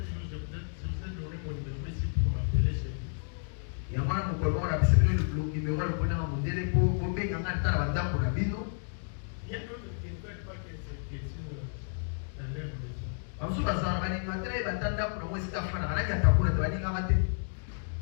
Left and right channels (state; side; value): silent; right; digital silence